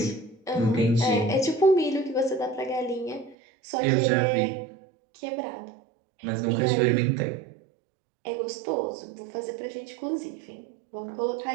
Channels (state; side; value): drops out; left; at 3.4 s